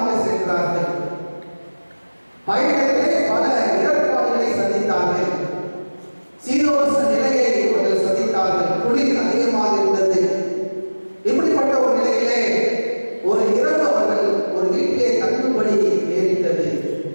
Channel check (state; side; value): inverted; both; correlation -1.00